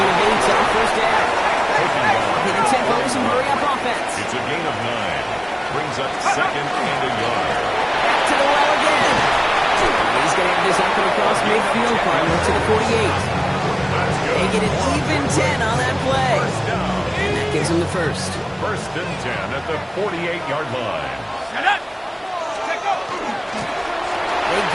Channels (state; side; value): identical; both; correlation 1.00